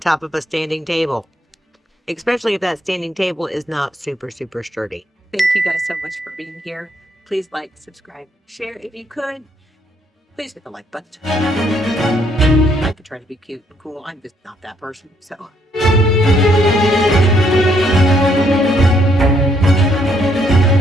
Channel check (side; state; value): both; normal; correlation 0.71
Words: top of a standing table, especially if that standing table is not super sturdy. Thank you guys so much for being here. Please like, subscribe, share if you could. Please hit the like button. I could try to be cute and cool. I'm just not that person, so.